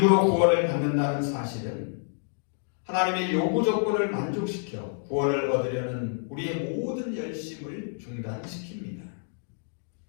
구원을 받는다는 사실은 하나님의 요구 조건을 만족시켜 구원을 얻으려는 우리의 모든 열심을 중단시킵니다.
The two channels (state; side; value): silent; right; 59 dB below the other